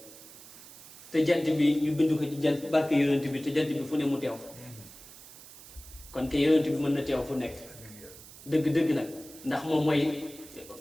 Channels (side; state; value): right; noise; hiss, 18 dB below the sound